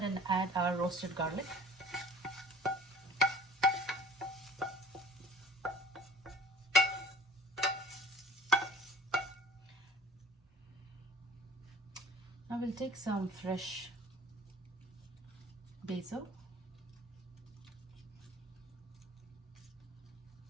and add our roasted garlic. Now we'll take some fresh basil.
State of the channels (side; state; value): both; normal; correlation 0.47